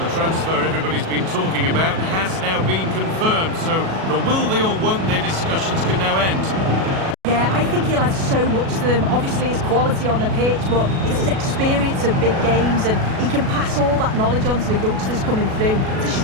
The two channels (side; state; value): left; late; 37 ms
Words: transfer everybody's been talking about has now been confirmed, so the will they or won't they discussions can now end. Yeah, I think he'll add so much to them. Obviously his quality on the pitch, but it's his experience of big games, and he can pass all that knowledge on to the youngsters coming through. It's a